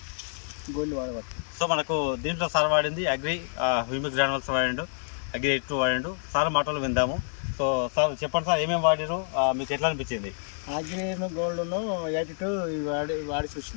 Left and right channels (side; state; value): right; silent; digital silence